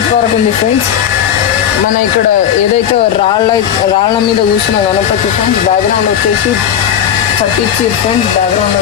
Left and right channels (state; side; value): quieter; right; 9.4 dB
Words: వరకు ఉంది ఫ్రెండ్స్. మన ఇక్కడ ఏదైతే రాళ్ళ మీద కూర్చున్న గణపతి ఫ్రెండ్స్, బ్యాక్గ్రౌండ్ వచ్చేసి చట్టించి ఫ్రెండ్స్, బ్యాక్గ్రౌండ్